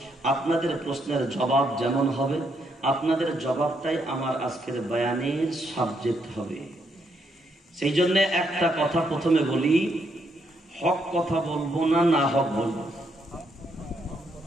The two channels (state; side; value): normal; both; correlation 0.76